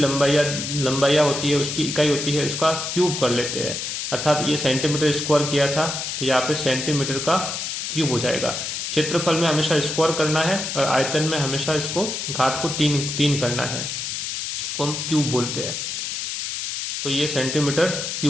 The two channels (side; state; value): left; noise; hiss, 4 dB below the sound